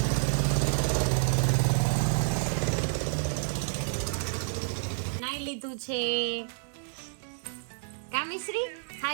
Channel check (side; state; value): left; silent; digital silence